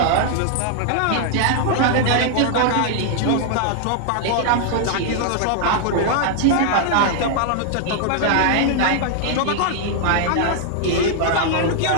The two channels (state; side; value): different; both; correlation 0.00